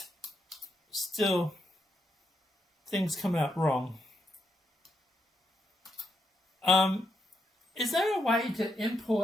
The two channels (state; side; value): normal; both; correlation 0.81